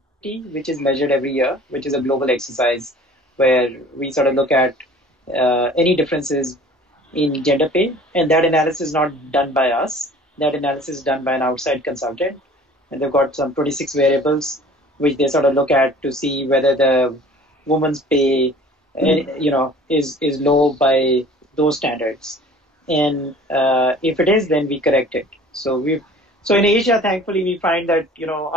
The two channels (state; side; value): normal; both; correlation 0.48